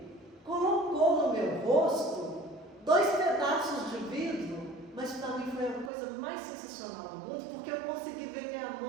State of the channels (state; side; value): drops out; left; at 5.9 s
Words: colocou no meu rosto 2 pedaços de vidro, mas para mim foi a coisa mais sensacional do mundo, porque eu consegui ver minha